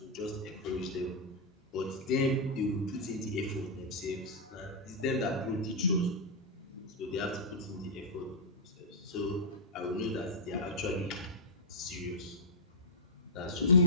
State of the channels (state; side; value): normal; both; correlation -0.08